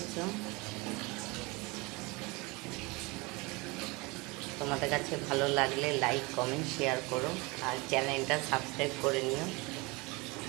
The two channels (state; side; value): quieter; left; 25.6 dB